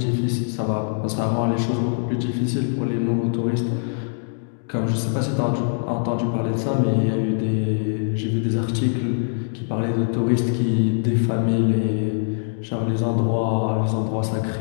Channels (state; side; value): silent; right; digital silence